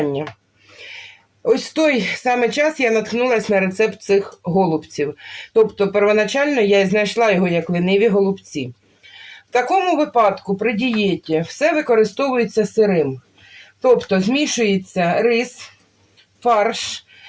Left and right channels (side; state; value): both; identical; correlation 1.00